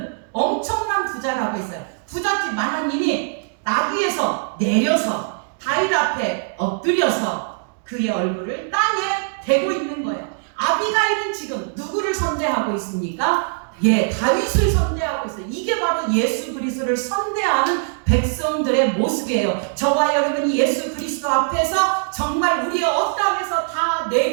엄청난 부자라고 했어요. 부잣집 마나님이 나귀에서 내려서 다윗 앞에 엎드려서 그의 얼굴을 땅에 대고 있는 거예요. 아비가일은 지금 누구를 선대하고 있습니까? 다윗을 선대하고 있어요. 이게 바로 예수 그리스도를 선대하는 백성들의 모습이에요. 저와 여러분이 예수 그리스도 앞에서 정말 우리의 어떠함에서 다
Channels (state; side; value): silent; left; digital silence